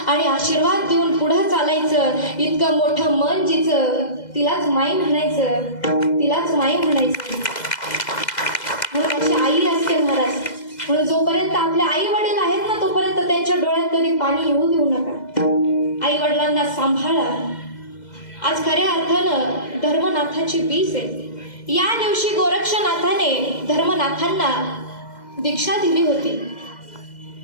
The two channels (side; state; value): right; late; 2.0 ms